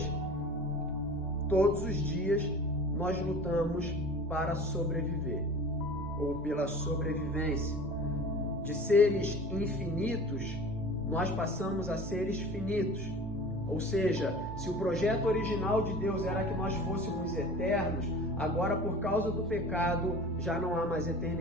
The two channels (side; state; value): both; normal; correlation 0.40